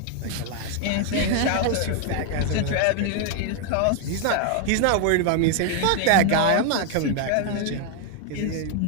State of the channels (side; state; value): both; different; correlation 0.00